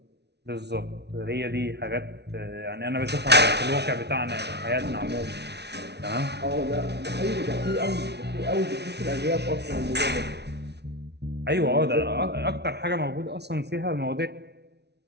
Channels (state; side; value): late; left; 0.49 ms